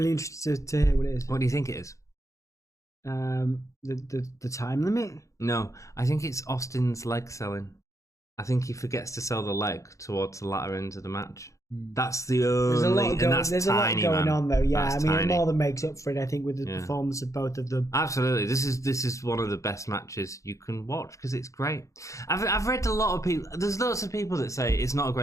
interested to hear what it is. What do you think it is? The time limit? No, I think it's Austin's leg selling. I think he forgets to sell the leg towards the latter end of the match. That's the only, there's a lot going on though. Yeah, That's it more than makes up for it, I think, with the performance of both of them. Absolutely, this is one of the best matches you can watch because it's great. I've read a lot of people. There's lots of people that say it's not a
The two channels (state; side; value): late; right; 0.15 ms